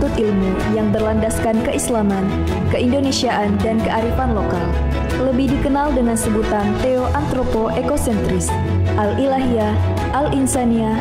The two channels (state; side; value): identical; both; correlation 1.00